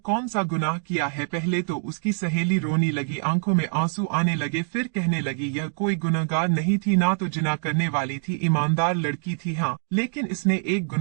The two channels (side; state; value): left; silent; digital silence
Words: सा गुनाह किया है? पहले तो उसकी सहेली रोने लगी, आंखों में आंसू आने लगे। फिर कहने लगी यह कोई गुनहगार नहीं थी, ना तो जिना करने वाली थी, ईमानदार लड़की थी। हाँ, लेकिन इसने एक